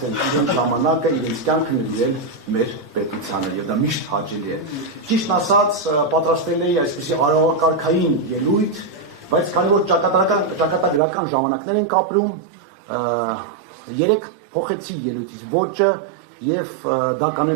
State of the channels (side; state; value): left; drops out; at 11.0 s